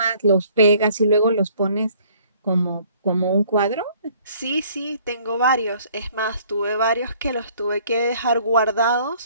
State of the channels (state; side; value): inverted; both; correlation -0.58